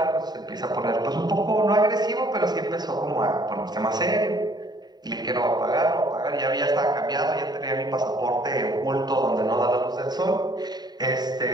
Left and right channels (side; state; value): left; late; 0.20 ms